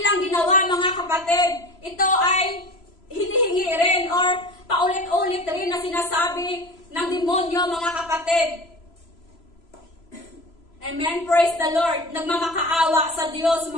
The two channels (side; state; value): right; late; 3.0 ms